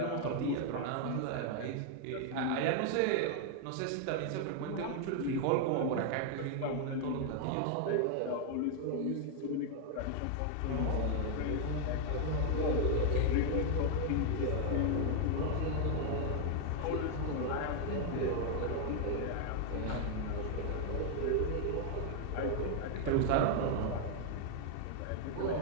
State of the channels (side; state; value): both; different; correlation 0.00